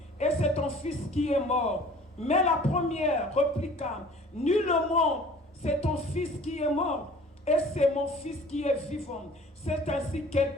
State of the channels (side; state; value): both; normal; correlation 0.49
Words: et c'est ton fils qui est mort. Mais la première répliqua, nullement, c'est ton fils qui est mort, et c'est mon fils qui est vivant. C'est ainsi qu'elles